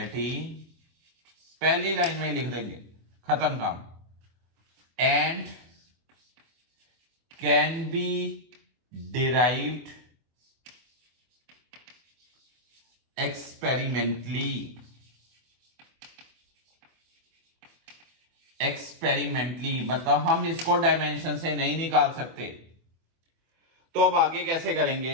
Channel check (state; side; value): late; left; 24 ms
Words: पहली लाइन में लिख देंगे, खत्म काम। And can be derived experimentally. Experimentally मतलब हम इसको डायमेंशन से नहीं निकाल सकते। तो अब आगे कैसे